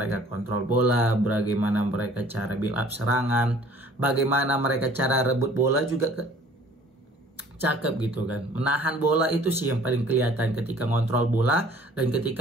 kontrol bola, bagaimana mereka cara build up serangan, bagaimana mereka cara rebut bola juga cakep gitu kan. Menahan bola itu sih yang paling kelihatan ketika kontrol bola dan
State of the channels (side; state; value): both; normal; correlation 0.53